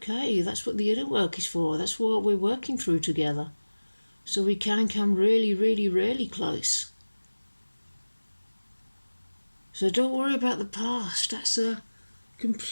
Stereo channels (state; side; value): inverted; both; correlation -1.00